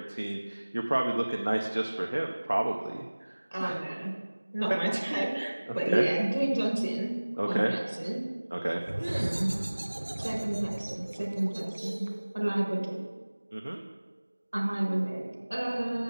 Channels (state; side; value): inverted; both; correlation -1.00